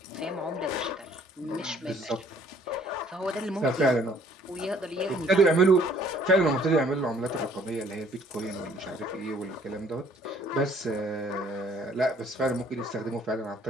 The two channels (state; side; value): normal; both; correlation 0.59